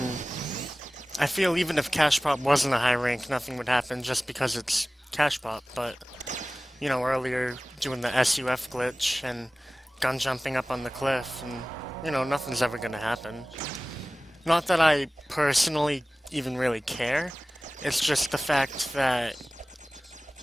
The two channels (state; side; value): normal; both; correlation 0.98